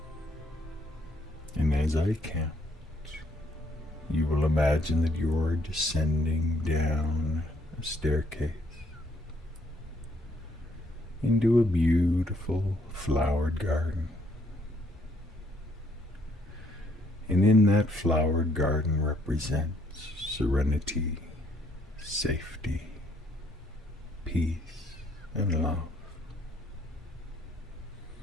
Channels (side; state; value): both; normal; correlation 0.68